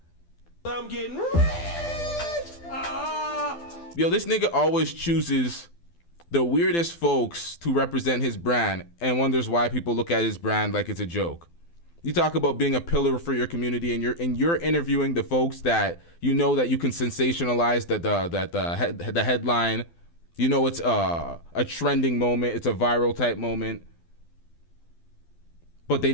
I'm getting rich. Yo, this nigga always chooses the weirdest folks to represent his brand and wonders why people look at his brand like it's a joke. You talk about being a pillar for your community, and you're interviewing the folks that you know that you can sensationalize the headline. You know it's a trending moment, it's a viral type moment, but they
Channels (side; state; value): right; late; 12 ms